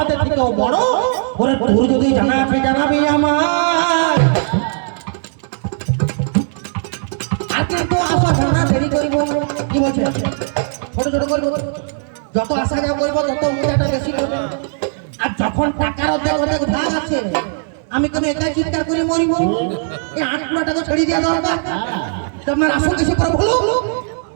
থেকেও বড়? ওরে তোর যদি জানা আছে জানাবে আমার। আজকে তো আসা জানা দেরি করিব কি করবো, যত আসা যাওয়া করবো তত মজাটা বেশি করবো। আর যখন টাকার অর্ধেক অর্ধেক ভাগ আছে, আমি কেন একাই চিৎকার করে মরিব? এই 8 টাকা ছাড়িয়ে দেওয়া দরকার। তা আপনার আসল কিছু করে বলো।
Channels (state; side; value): silent; left; digital silence